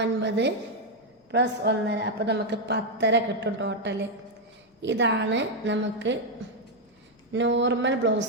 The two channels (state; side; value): normal; both; correlation 0.02